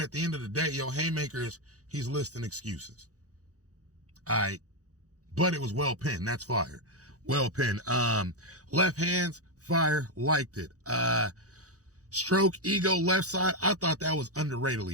the end of the day, yo, haymakers, he's listing excuses. All right. But it was well pinned. That's fire. Well pinned. Left hands, fire. Liked it. Stroke, ego, left side. I thought that was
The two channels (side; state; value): left; late; 0.66 ms